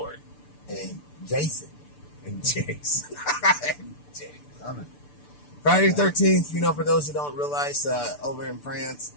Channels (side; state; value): right; late; 6.8 ms